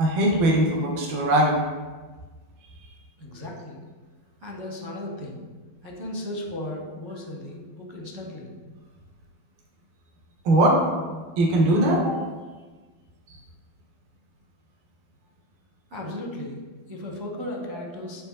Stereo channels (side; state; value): left; late; 12 ms